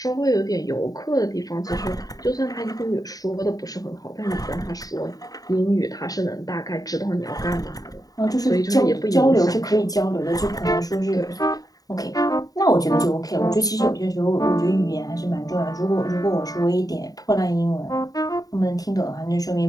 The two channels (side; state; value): right; late; 0.18 ms